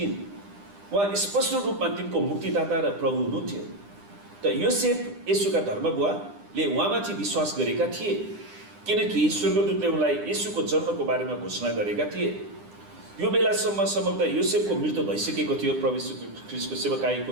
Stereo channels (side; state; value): left; late; 9.9 ms